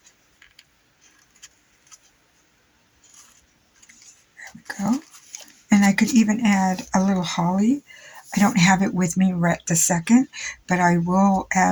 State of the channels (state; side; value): identical; both; correlation 1.00